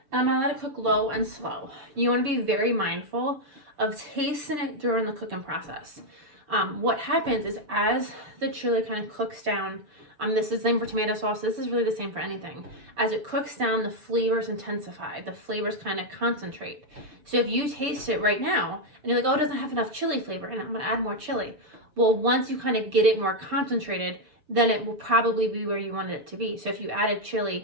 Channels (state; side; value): late; left; 6.9 ms